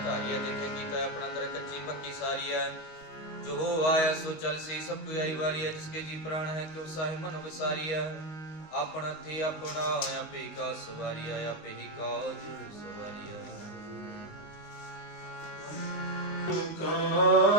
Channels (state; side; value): late; right; 19 ms